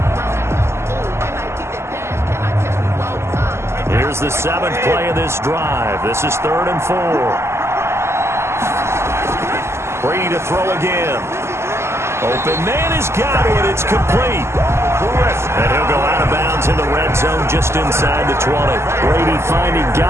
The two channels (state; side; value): late; left; 0.13 ms